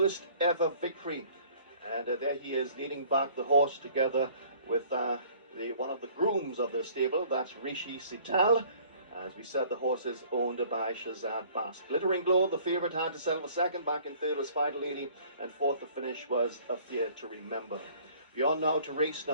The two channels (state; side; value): inverted; both; correlation -0.54